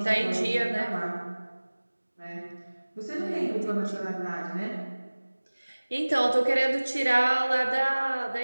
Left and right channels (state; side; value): inverted; both; correlation -1.00